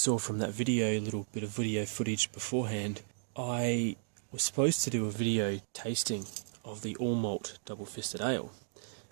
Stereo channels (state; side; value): silent; left; digital silence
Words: from that video, a little bit of video footage beforehand, I was supposed to do a video tasting of the all malt double fisted ale,